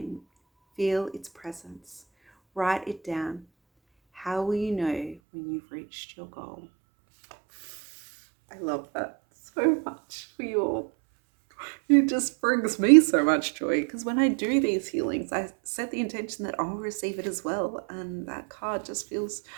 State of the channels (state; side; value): drops out; left; at 5.2 s